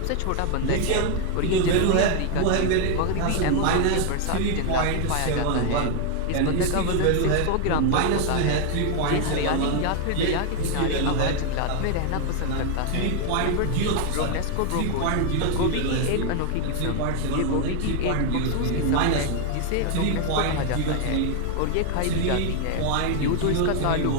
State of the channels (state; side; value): different; both; correlation 0.00